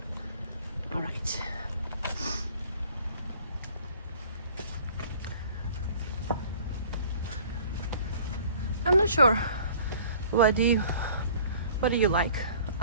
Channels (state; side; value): inverted; both; correlation -0.50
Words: all right. I'm not sure what do you like.